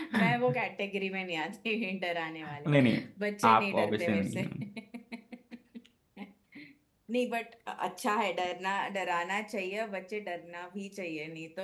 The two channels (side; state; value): both; identical; correlation 1.00